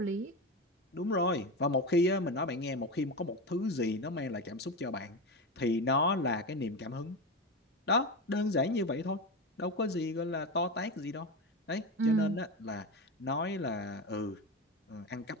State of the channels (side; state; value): both; normal; correlation 0.20